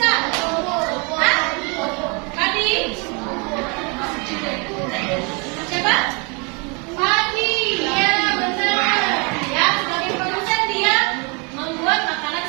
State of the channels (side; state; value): left; quieter; 31.9 dB